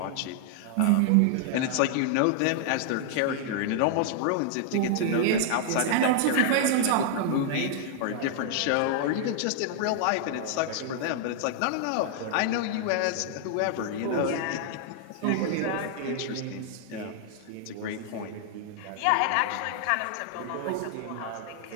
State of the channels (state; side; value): different; both; correlation -0.01